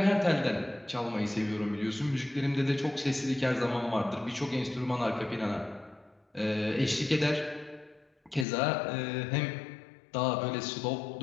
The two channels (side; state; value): right; drops out; at 8.5 s